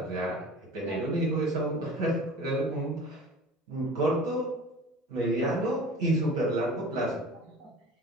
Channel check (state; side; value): normal; both; correlation 0.41